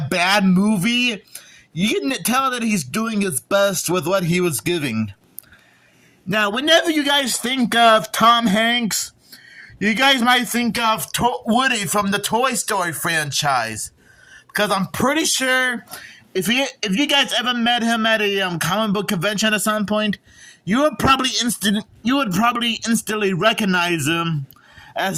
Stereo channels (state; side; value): identical; both; correlation 1.00